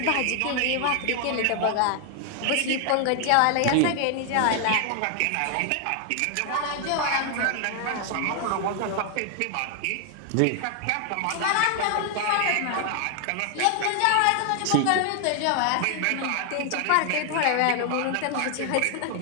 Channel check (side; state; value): both; different; correlation 0.00